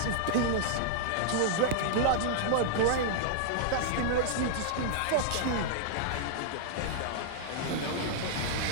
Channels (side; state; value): both; different; correlation -0.01